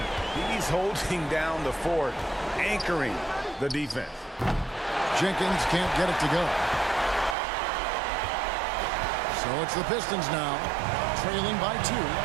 He's holding down the fort, anchoring the defense. Jenkins can't get it to go. So it's the Pistons now, trailing by 2.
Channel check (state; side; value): drops out; left; at 7.4 s